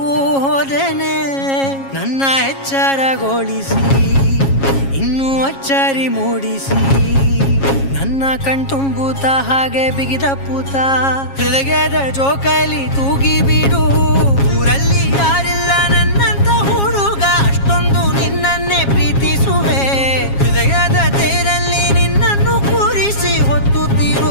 ಹೋದನೆ. ನನ್ನ ಎಚ್ಚರಗೊಳಿಸಿ ಇನ್ನೂ ಅಚ್ಚರಿ ಮೂಡಿಸಿ, ನನ್ನ ಕಣ್ತುಂಬುತ್ತ ಹಾಗೆ ಬಿಗಿದಪ್ಪುತ್ತ ಹೃದಯದ ಜೋಕಲಿ ತೂಗಿ ಬಿಡು. ಊರಲ್ಲಿ ಯಾರಿಲ್ಲ ನನ್ನಂತ ಹುಡುಗ, ಅಷ್ಟೊಂದು ನಿನ್ನನ್ನೇ ಪ್ರೀತಿಸುವೆ. ಹೃದಯದ ತೇರಲ್ಲಿ ನಿನ್ನನ್ನು ಕೂರಿಸಿ ಹೊತ್ತು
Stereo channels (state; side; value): late; right; 7.3 ms